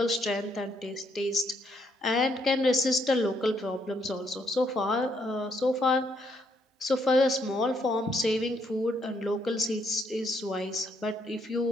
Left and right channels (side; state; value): both; normal; correlation 0.72